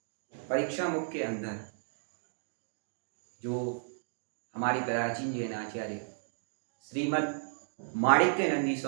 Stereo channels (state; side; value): silent; left; digital silence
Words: परीक्षा मुख के अंदर जो हमारी प्राचीन जैन आचार्य श्रीमद् माणिक्य नंदी